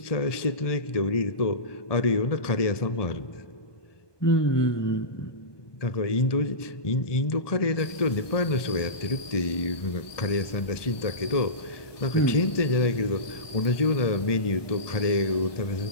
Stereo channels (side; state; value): right; late; 1.2 ms